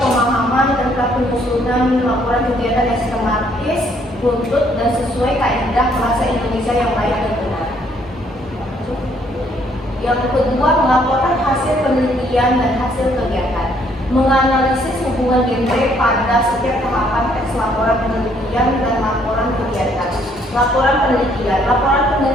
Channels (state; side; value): normal; both; correlation 0.66